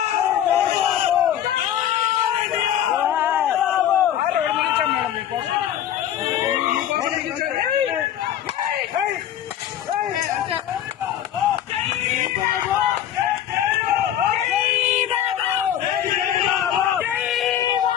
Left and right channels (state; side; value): quieter; right; 10.9 dB